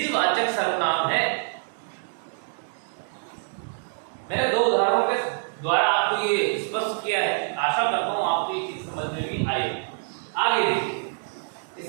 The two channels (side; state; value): left; silent; digital silence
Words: सर्वनाम है। मैंने दो उदाहरणों के द्वारा आपको ये स्पष्ट किया है। आशा करता हूं आपको ये चीज समझ में भी आई। आगे देखिए,